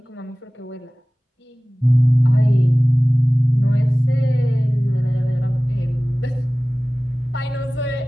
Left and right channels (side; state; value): both; normal; correlation 0.98